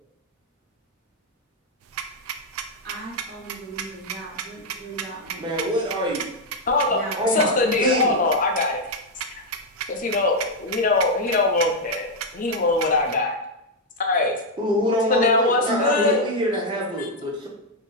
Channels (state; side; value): normal; both; correlation 0.01